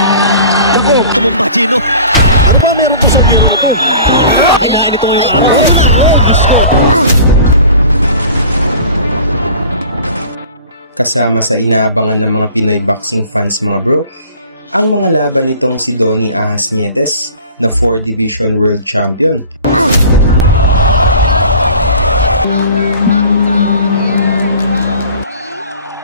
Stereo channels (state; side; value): inverted; both; correlation -0.45